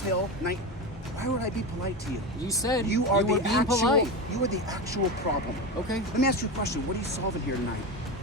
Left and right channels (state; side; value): normal; both; correlation 0.20